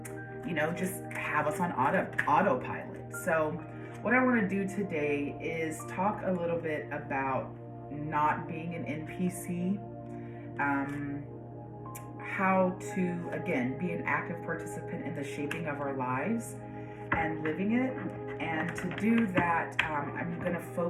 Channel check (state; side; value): identical; both; correlation 1.00